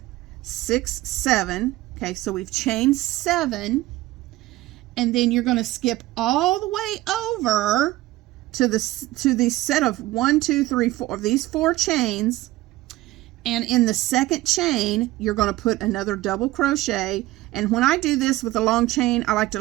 6, 7. Okay, so we've chained 7, and then you're going to skip all the way over to the set of 1, 2, 3, 4 of these 4 chains, and in the 2nd chain you're going to put another double crochet. And when I do this with a long chain, I like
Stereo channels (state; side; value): quieter; left; 17.5 dB